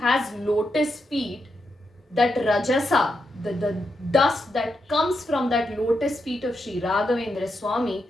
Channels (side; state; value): both; normal; correlation 0.84